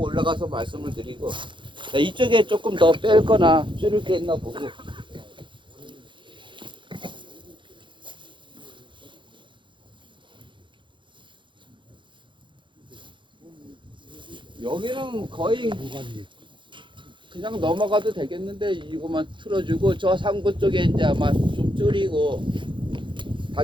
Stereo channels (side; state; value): left; late; 0.23 ms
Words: 올라가서 말씀을 드리고 자, 이쪽에 조금 더 뺄 거나 줄일 게 있나 보고 여기는 거의 그냥 넘어가도 되겠는데 이거만 틀어주고 저 상부 쪽에 이제 아마 좀 줄이고